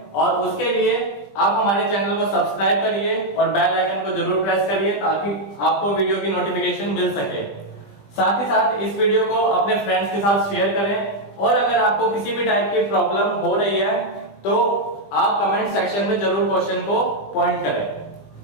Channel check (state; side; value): late; right; 20 ms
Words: और उसके लिए आप हमारे चैनल को सब्सक्राइब करिए और बेल आइकन को जरूर प्रेस करिए ताकि आपको वीडियो की नोटिफिकेशन मिल सके। साथ ही साथ इस वीडियो को अपने फ्रेंड्स के साथ शेयर करें, और अगर आपको किसी भी टाइप की प्रॉब्लम हो रही है तो आप कमेंट सेक्शन में जरूर क्वेश्चन को पॉइंट करें।